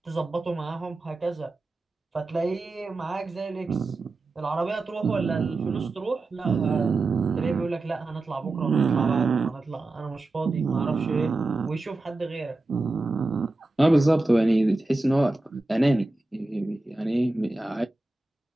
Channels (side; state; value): left; quieter; 3.0 dB